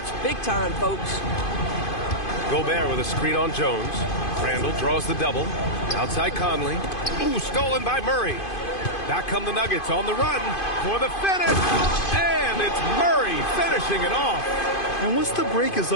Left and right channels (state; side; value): late; right; 2.5 ms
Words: big time, folks. Gobert with a screen on Jones. Randall draws the double. Outside Conley. Ooh, stolen by Murray. Back come the Nuggets on the run for the finish. And it's Murray finishing it off. And once the break is